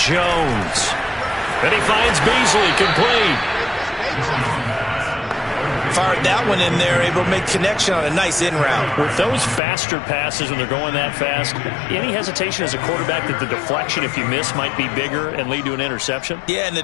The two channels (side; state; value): right; drops out; at 9.6 s